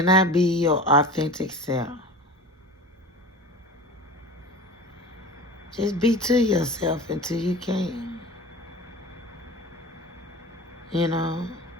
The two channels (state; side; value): normal; both; correlation 0.36